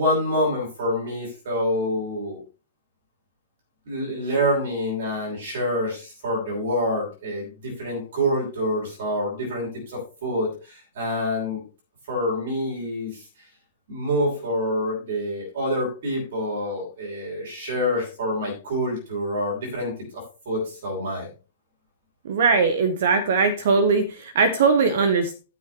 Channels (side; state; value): both; inverted; correlation -0.41